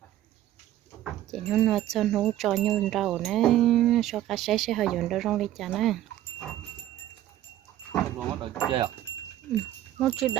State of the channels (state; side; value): quieter; left; 13.1 dB